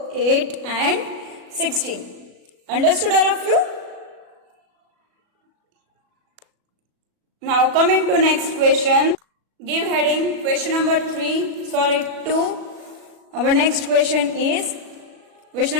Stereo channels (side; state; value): left; late; 37 ms